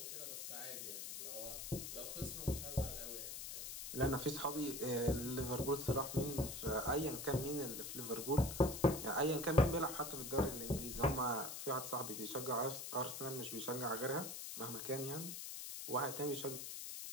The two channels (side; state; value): left; noise; hiss, 6 dB below the sound